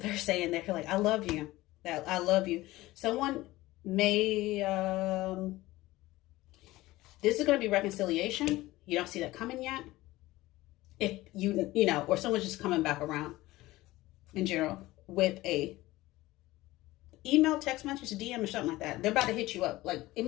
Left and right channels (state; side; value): quieter; right; 18.1 dB